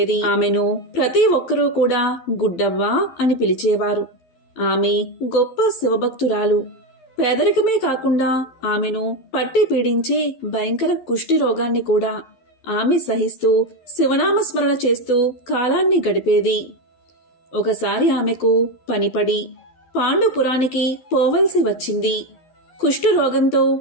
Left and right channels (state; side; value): late; right; 11 ms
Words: ఆమెను ప్రతి ఒక్కరూ కూడా గుడ్డవ్వ అని పిలిచేవారు. ఆమె గొప్ప శివభక్తురాలు. పేదరికమే కాకుండా ఆమెను పట్టి పీడించే భయంకర కుష్టి రోగాన్ని కూడా ఆమె సహిస్తూ శివనామస్మరణ చేస్తూ కాలాన్ని గడిపేది. ఒకసారి ఆమెకు పనిపడి పాండుపురానికి పోవలసి వచ్చింది. కుష్టు రోగంతో